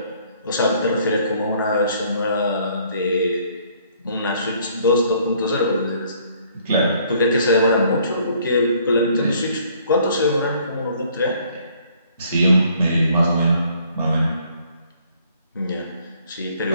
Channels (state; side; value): inverted; both; correlation -0.62